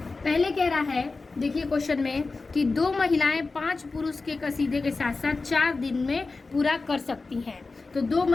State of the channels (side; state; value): right; quieter; 3.8 dB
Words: पहले कह रहा है, देखिए क्वेश्चन में कि 2 महिलाएं 5 पुरुष के कसीदे के साथ साथ 4 दिन में पूरा कर सकती हैं। तो 2